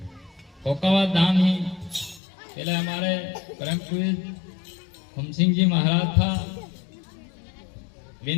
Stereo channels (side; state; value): right; drops out; at 2.2 s